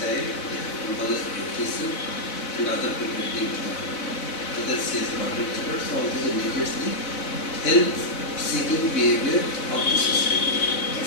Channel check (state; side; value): late; right; 4.1 ms